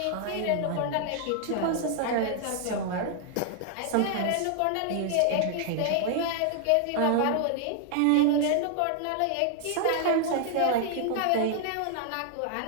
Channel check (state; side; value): different; both; correlation 0.00